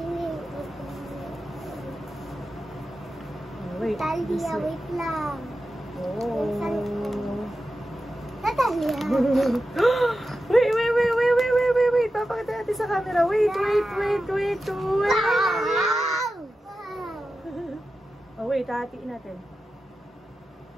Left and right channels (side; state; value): both; normal; correlation 0.92